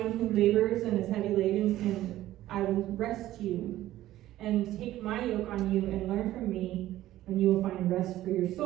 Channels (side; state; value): left; quieter; 14.5 dB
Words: who labors and is heavy laden, and I will rest you. And take my yoke on you and learn from me, and you will find rest for your